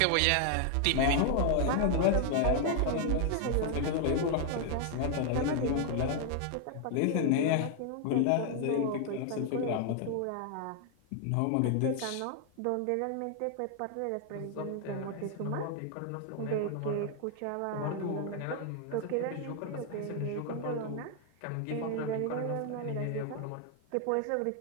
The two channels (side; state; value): both; different; correlation 0.00